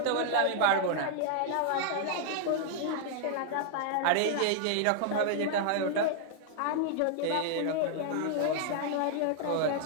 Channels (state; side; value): different; both; correlation -0.01